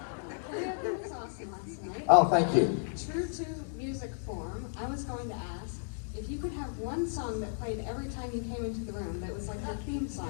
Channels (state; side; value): silent; right; digital silence